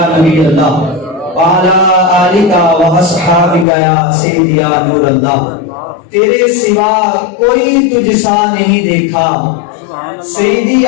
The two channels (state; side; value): drops out; right; at 3.7 s